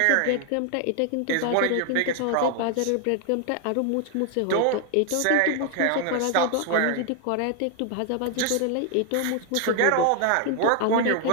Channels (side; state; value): both; different; correlation 0.00